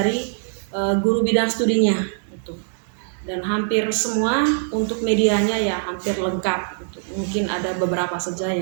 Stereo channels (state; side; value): silent; left; digital silence